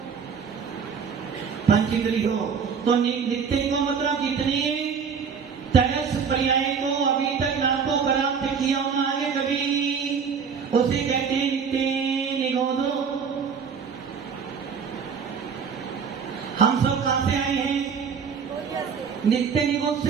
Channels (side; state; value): left; quieter; 6.3 dB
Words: पंचेंद्री हो तो नित्य को मतलब जितने तरस पर्याय को अभी तक ना तो प्राप्त किया होना आगे कभी, उसे कहते हैं नित्य निगोद। हम सब कहां से आए हैं? नित्य निगोद